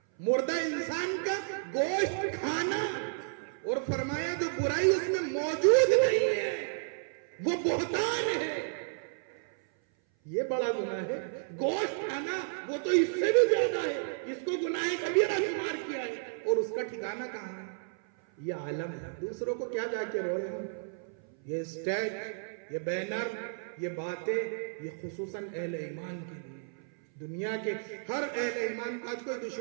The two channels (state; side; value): silent; left; 56 dB below the other